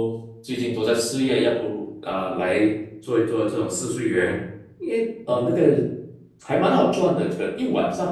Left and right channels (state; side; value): identical; both; correlation 1.00